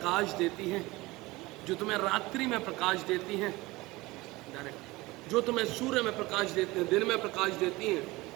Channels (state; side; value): quieter; left; 21.0 dB